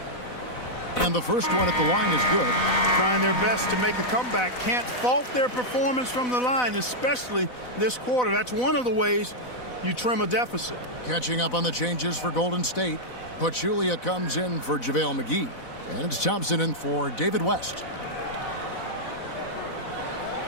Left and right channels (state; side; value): late; right; 4.0 ms